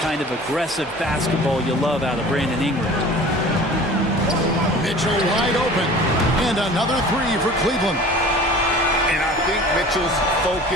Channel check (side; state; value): both; normal; correlation 0.43